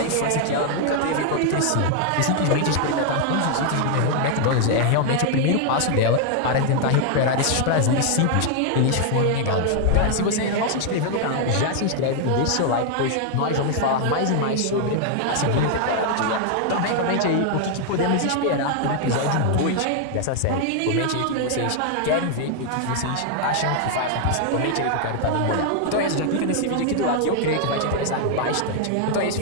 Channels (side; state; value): both; different; correlation 0.00